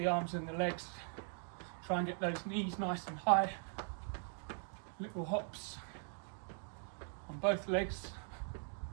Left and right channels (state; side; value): silent; left; 50 dB below the other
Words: arms and the legs. Try and get those knees nice and high. Little hops on both legs.